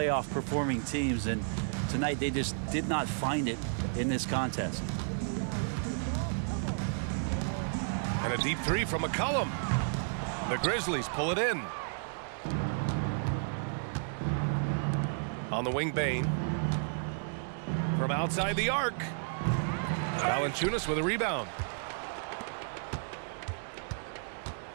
performing teams, and tonight they just did not find it in this contest. And a deep 3 from McCollum. The Grizzlies pull it in. On the wing, Bane. From outside the arc. Valanciunas with a rebound.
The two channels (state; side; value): silent; left; digital silence